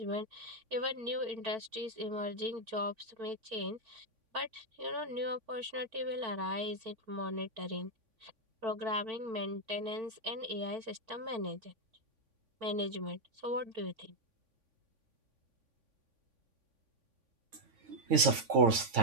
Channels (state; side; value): late; left; 3.5 ms